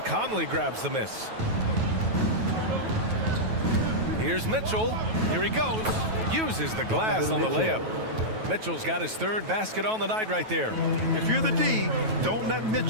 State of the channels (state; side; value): late; left; 9.2 ms